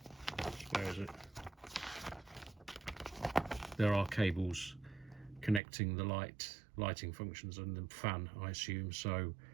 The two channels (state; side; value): drops out; left; at 5.6 s